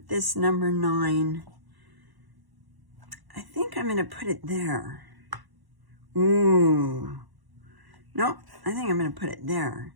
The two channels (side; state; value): left; late; 1.1 ms